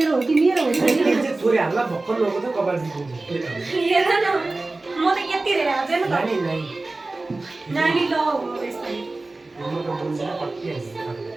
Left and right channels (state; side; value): quieter; left; 3.2 dB